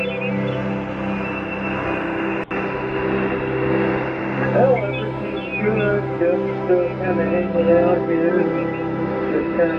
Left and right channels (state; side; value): identical; both; correlation 1.00